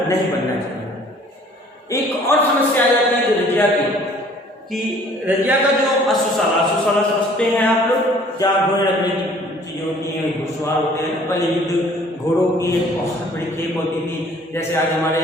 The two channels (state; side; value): normal; both; correlation 0.55